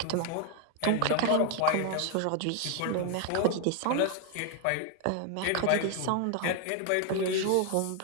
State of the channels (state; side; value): different; both; correlation 0.00